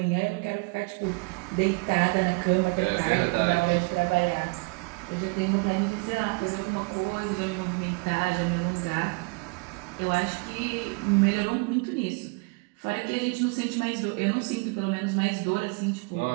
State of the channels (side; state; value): left; quieter; 29.7 dB